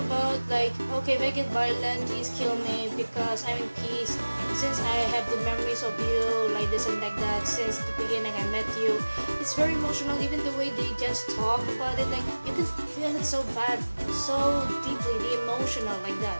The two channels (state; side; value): inverted; both; correlation -1.00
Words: like, okay, if I get violent, please kill me because I'm in peace. Since I have the memories of you, like this and like that, since the beginning I met you. It's very emotional, even the way they just talk about it, like you can feel it so bad, so deeply, the emotional like that.